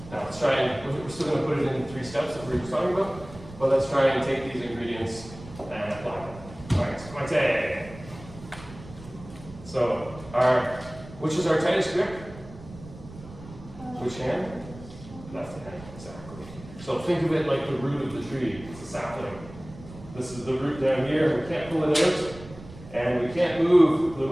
Now let's try and, we're still going to put it in 3 steps that we were talking about, but let's try and take these ingredients and apply them. Alright, my tag. So, which is our tightest grip? Which hand? Left hand, exactly. So think of it like the root of the tree. It's a sapling. This is the root down here. We can't pull it out, and we can't move the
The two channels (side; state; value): right; noise; rumble, 17 dB below the sound